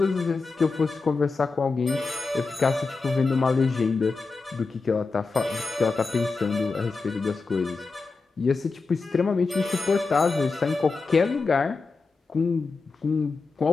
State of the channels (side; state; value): right; quieter; 4.2 dB